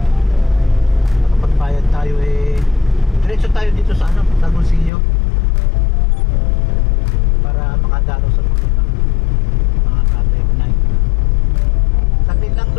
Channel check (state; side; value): drops out; right; at 4.9 s